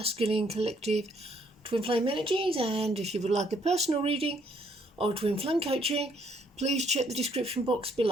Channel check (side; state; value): both; normal; correlation 0.68